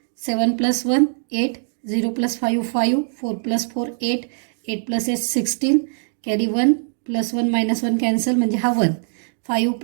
7 + 1 8, 0 + 5 5, 4 + 4 8, 8 + 8 16, कॅरी 1 + 1 - 1 कॅन्सल म्हणजे हा 1. 5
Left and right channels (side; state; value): left; silent; 63 dB below the other